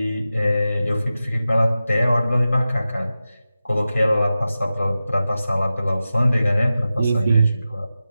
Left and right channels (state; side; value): inverted; both; correlation -0.93